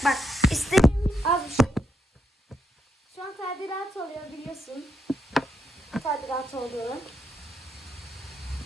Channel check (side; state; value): both; normal; correlation 0.81